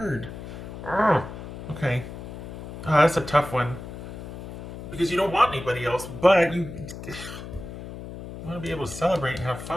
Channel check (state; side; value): noise; left; hum, 11 dB below the sound